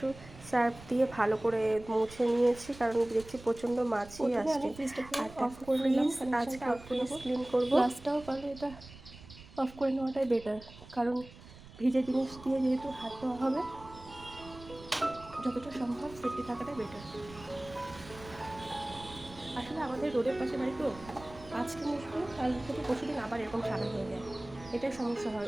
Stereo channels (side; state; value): right; noise; rumble, 18 dB below the sound